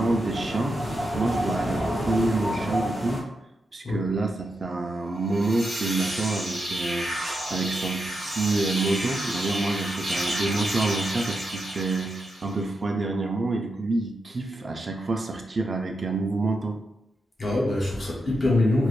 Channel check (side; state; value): both; normal; correlation 0.86